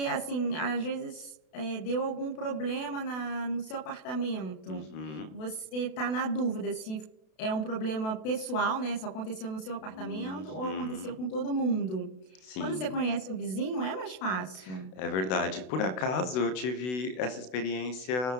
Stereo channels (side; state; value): right; late; 32 ms